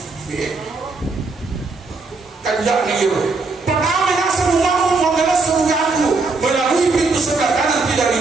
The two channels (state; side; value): quieter; left; 3.9 dB